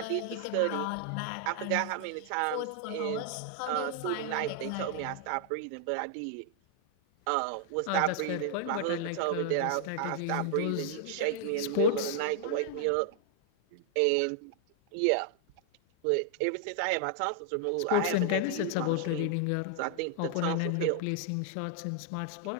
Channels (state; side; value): different; both; correlation 0.00